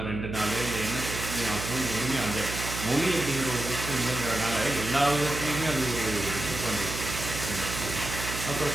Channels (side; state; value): right; noise; hum, 6 dB below the sound